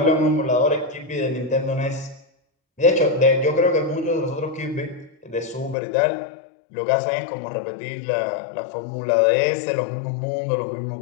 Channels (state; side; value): drops out; right; at 5.8 s